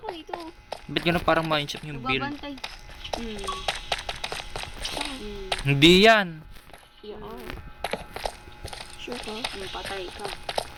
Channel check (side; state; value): both; identical; correlation 1.00